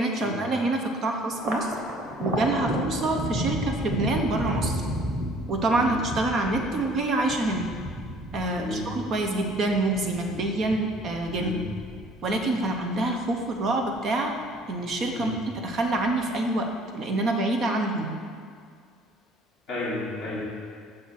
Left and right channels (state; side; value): normal; both; correlation 0.55